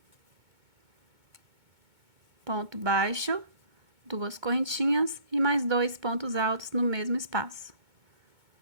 Ponto baixo, duas correntinhas e mais 2 pontos altos no mesmo espaço.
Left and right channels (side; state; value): left; late; 2.2 ms